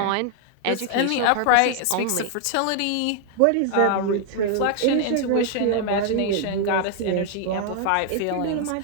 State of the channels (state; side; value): different; both; correlation 0.00